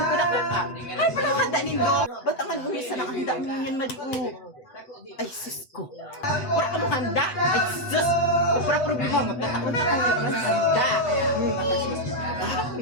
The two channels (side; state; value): right; late; 8.0 ms